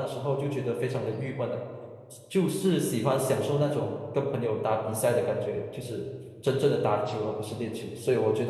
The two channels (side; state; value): both; identical; correlation 1.00